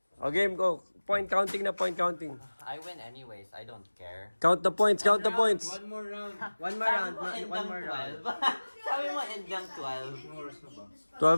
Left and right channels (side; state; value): both; inverted; correlation -1.00